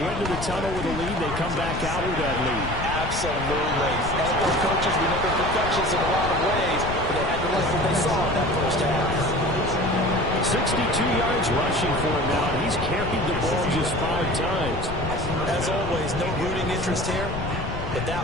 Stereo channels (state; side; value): noise; left; rumble, 6 dB below the sound